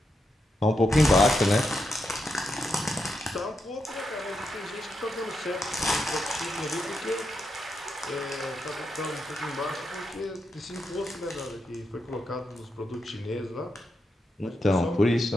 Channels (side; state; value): both; normal; correlation 0.84